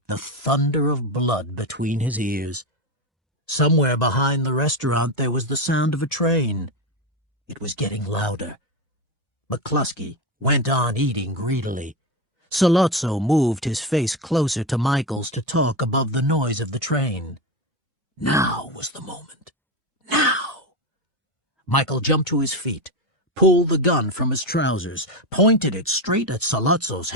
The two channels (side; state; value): both; normal; correlation 0.15